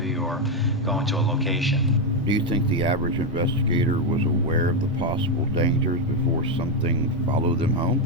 or going to a location. Do you think the average investigator was aware of the possible dangers before something followed them home?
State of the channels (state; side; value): normal; both; correlation 0.05